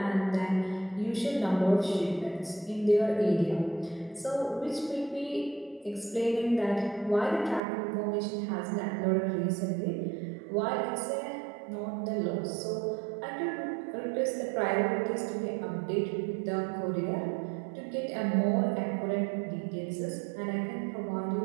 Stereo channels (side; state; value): left; drops out; at 7.6 s